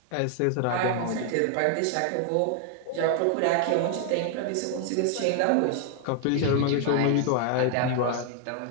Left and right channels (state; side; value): different; both; correlation 0.00